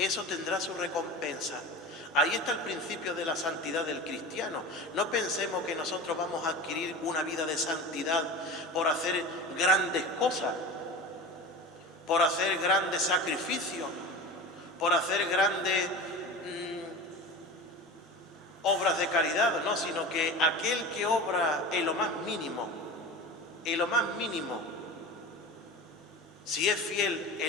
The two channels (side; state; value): both; normal; correlation 0.31